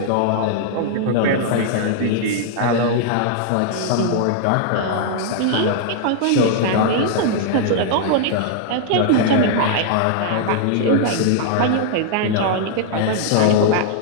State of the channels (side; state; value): both; different; correlation -0.01